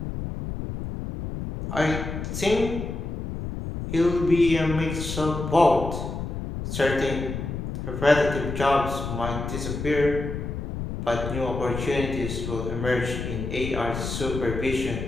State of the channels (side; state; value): left; noise; rumble, 5 dB below the sound